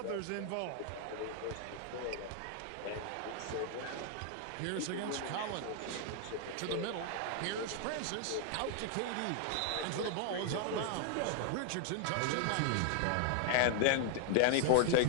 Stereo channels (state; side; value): different; both; correlation 0.00